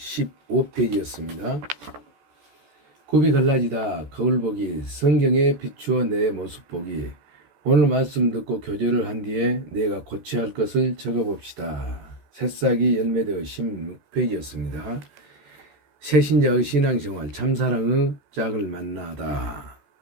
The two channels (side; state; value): left; late; 14 ms